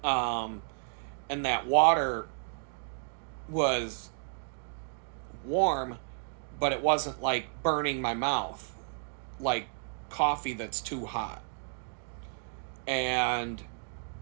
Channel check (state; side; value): silent; left; 56 dB below the other